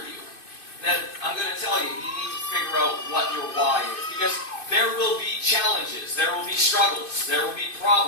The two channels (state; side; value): late; right; 2.6 ms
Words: you, then I'm going to tell you, you need to figure out what your why is. Because there will be challenges, there will be struggles, there will be